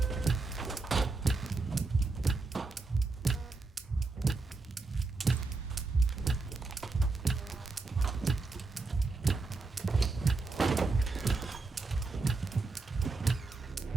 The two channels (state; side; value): quieter; left; 3.7 dB